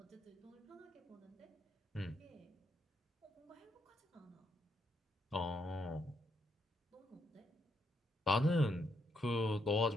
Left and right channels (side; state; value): both; normal; correlation 0.77